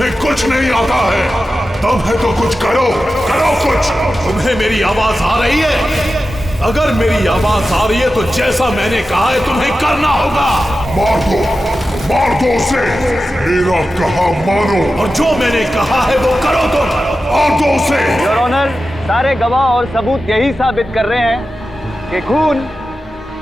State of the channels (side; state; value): both; normal; correlation 0.92